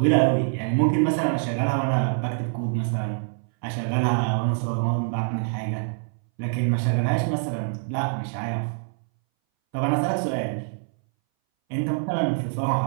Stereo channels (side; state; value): left; silent; 60 dB below the other